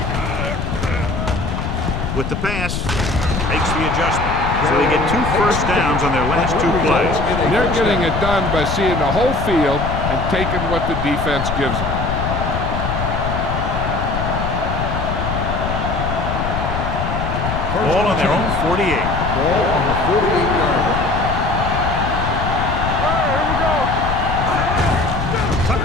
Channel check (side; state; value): left; noise; rumble, 3 dB below the sound